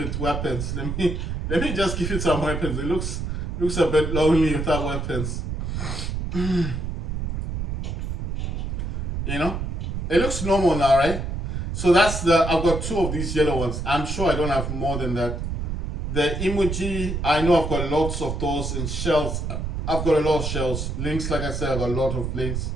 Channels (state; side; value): noise; right; rumble, 3 dB below the sound